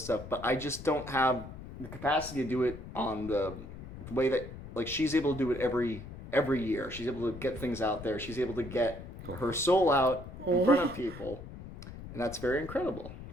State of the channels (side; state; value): left; noise; rumble, 13 dB below the sound